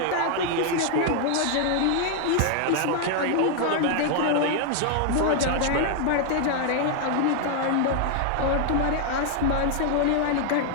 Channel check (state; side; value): different; both; correlation 0.00